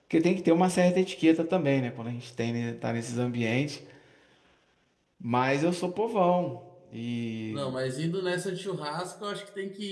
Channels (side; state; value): both; identical; correlation 1.00